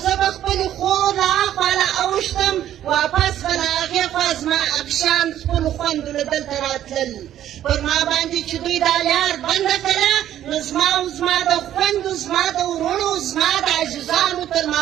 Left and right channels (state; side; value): quieter; left; 11.6 dB